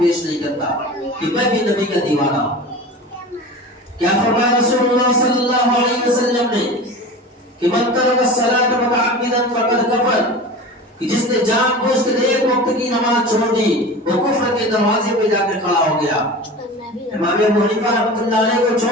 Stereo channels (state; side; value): normal; both; correlation 0.34